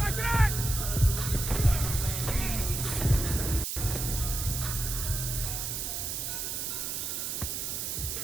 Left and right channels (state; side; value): noise; right; hiss, 3 dB below the sound